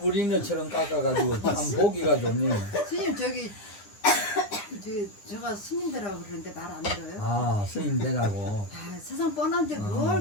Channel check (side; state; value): right; late; 9.8 ms